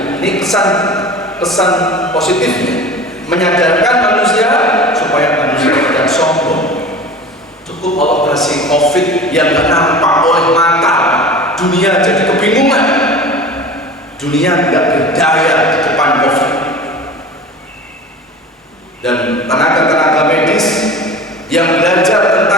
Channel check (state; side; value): normal; both; correlation 0.37